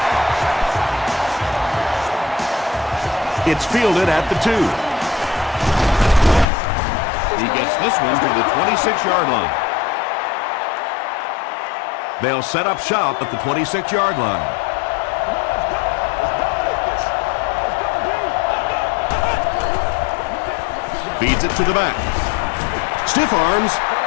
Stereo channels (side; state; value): right; drops out; at 6.5 s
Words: It's fielded at the 2. He gets this one to the 26-yard line. They'll set up shop at the 26-yard line. Feeds it to the back. Stiff arms,